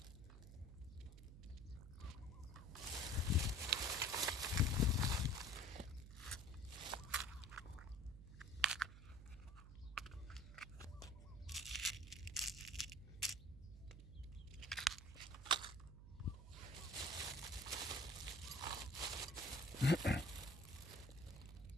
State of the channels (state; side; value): noise; right; hum, 14 dB below the sound